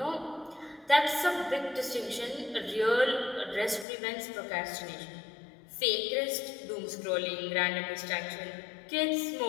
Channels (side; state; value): right; drops out; at 3.9 s